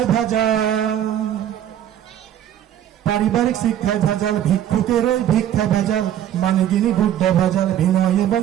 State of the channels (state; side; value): quieter; left; 10.9 dB